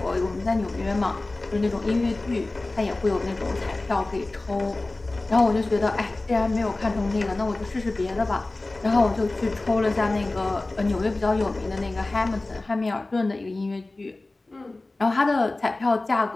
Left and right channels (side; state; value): right; quieter; 3.0 dB